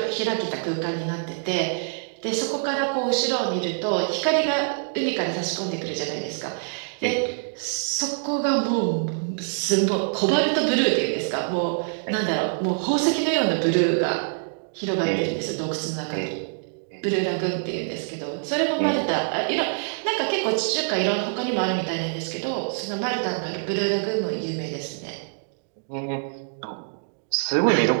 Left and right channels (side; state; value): left; silent; digital silence